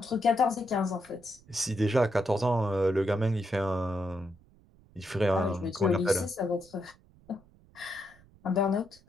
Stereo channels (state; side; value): noise; right; rumble, 27 dB below the sound